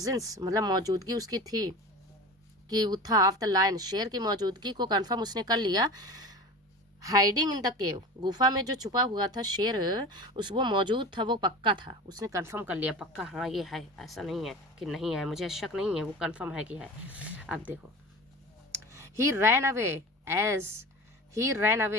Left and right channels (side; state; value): both; normal; correlation 0.33